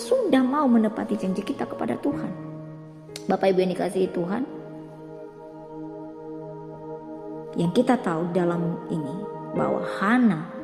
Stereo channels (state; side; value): identical; both; correlation 1.00